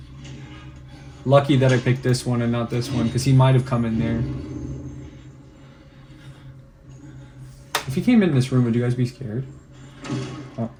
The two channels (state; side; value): identical; both; correlation 1.00